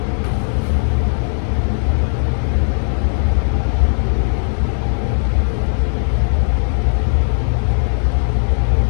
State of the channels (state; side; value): silent; right; 63 dB below the other